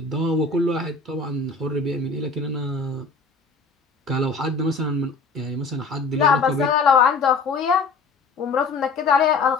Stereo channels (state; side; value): quieter; right; 4.1 dB